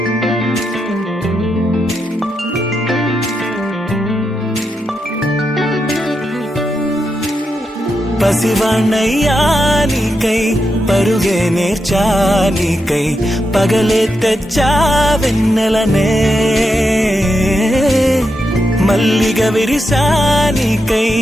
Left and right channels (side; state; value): both; normal; correlation 0.85